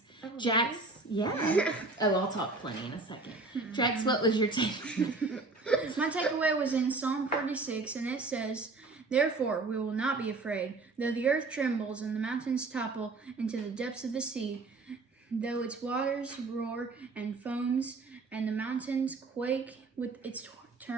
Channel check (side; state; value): left; quieter; 3.6 dB